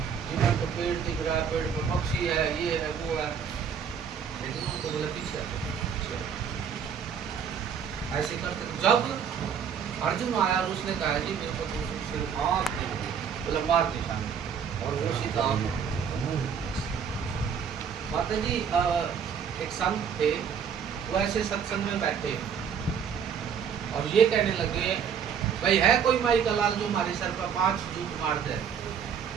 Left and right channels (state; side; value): quieter; left; 7.3 dB